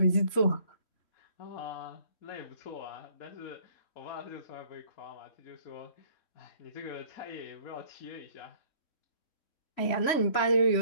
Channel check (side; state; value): right; late; 3.7 ms